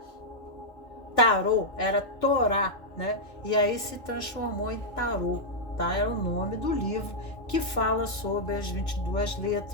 tarô, era Torá, né? E aí se transformou em tarô, tá? Era o nome do livro que fala sobre as 22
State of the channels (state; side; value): late; right; 2.2 ms